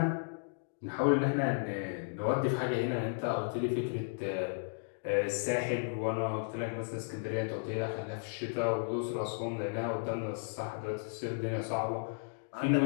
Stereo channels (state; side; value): silent; right; digital silence